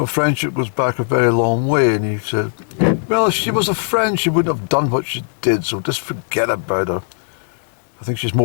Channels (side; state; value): right; silent; digital silence